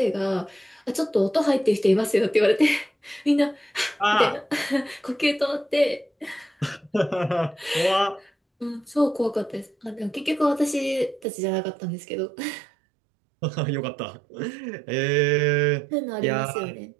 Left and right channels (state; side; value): drops out; left; at 11.2 s